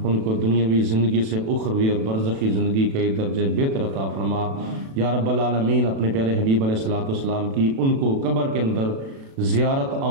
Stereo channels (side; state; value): left; late; 36 ms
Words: ان کو دنیاوی زندگی سے اخروی اور برزخی زندگی کے درجے بہتر عطا فرما۔ یا رب العالمین اپنے پیارے حبیب علیہ الصلوۃ والسلام کی ان کو قبر کے اندر زیارت